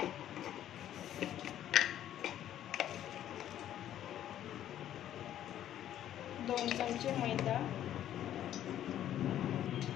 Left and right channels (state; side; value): quieter; right; 11.4 dB